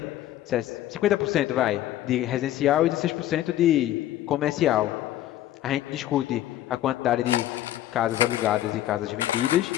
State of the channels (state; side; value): quieter; right; 13.2 dB